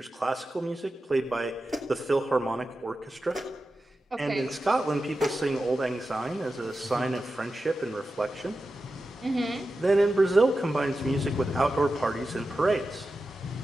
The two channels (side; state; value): both; normal; correlation 0.92